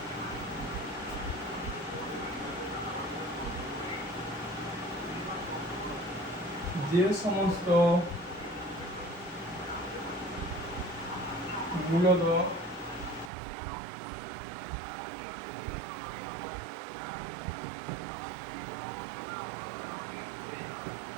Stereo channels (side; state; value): left; drops out; at 13.3 s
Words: যে সমস্ত মূলত